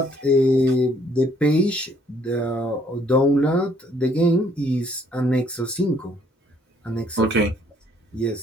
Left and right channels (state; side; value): normal; both; correlation 0.64